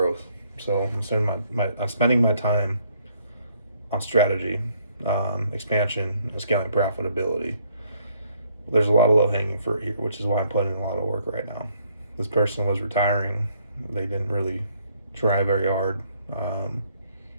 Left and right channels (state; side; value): inverted; both; correlation -0.68